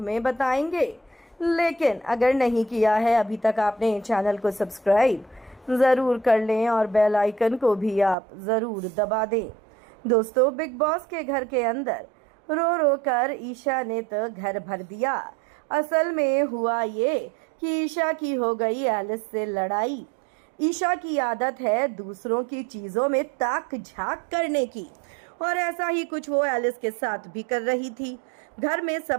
बताएंगे। लेकिन अगर नहीं किया है अभी तक आपने चैनल को सब्सक्राइब ज़रूर कर लें और बेल आइकन को भी आप ज़रूर दबा दें। दोस्तों, बिग बॉस के घर के अंदर रो रो कर ईशा ने तो घर भर दिया। असल में हुआ ये कि ईशा की हो गई एलिस से लड़ाई। ईशा की आदत है दूसरों की चीज़ों में ताक झांक करने की, और ऐसा ही कुछ वो एलिस के साथ भी कर रही थी। घर में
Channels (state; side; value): drops out; left; at 8.2 s